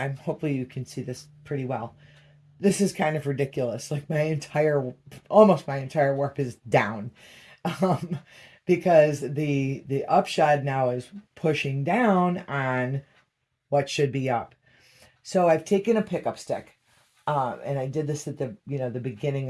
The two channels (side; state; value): both; identical; correlation 1.00